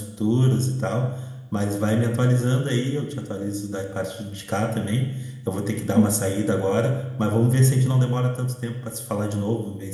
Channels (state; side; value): identical; both; correlation 1.00